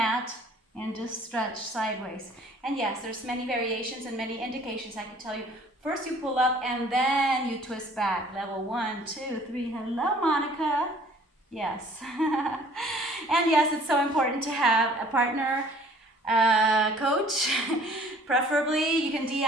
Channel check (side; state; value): both; normal; correlation 0.54